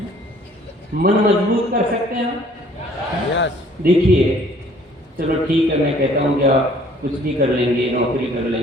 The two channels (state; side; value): normal; both; correlation 0.57